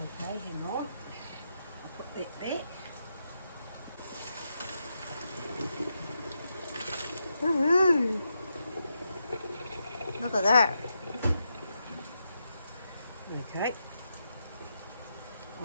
Okay, hang on. I'll put that back. Woohoo! Look at that. Okay.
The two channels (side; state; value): both; inverted; correlation -0.85